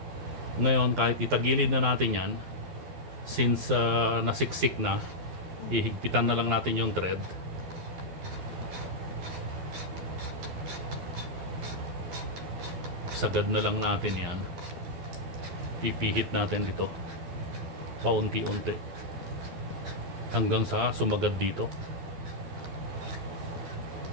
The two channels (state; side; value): late; left; 12 ms